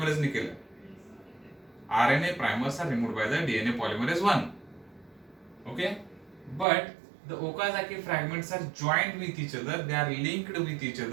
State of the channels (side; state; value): left; drops out; at 6.7 s